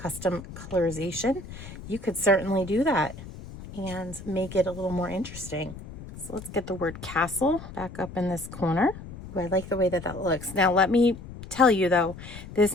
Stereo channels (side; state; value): left; noise; rumble, 13 dB below the sound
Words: colorization, you could certainly do that and make it a little more interesting. So let's get the word castle back up in this corner. Ooh, I like the way that that looks. Now let me tell you though, this